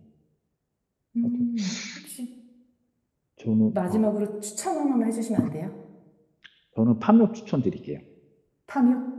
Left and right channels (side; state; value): both; identical; correlation 1.00